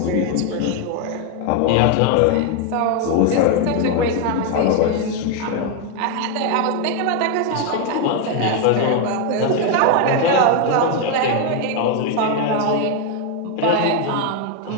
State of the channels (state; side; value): different; both; correlation 0.01